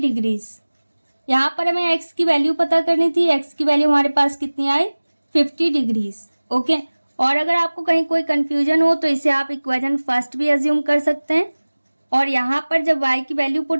यहाँ पर हमें x की वैल्यू पता करनी थी, x की वैल्यू हमारे पास कितनी आई 50 डिग्रीज। ओके, और अगर आपको कहीं कोई कंफ्यूजन हो तो इसे आप इक्वेशन फर्स्ट भी अज्यूम कर सकते हैं, और यहाँ पर जब y की वैल्यू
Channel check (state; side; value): inverted; both; correlation -1.00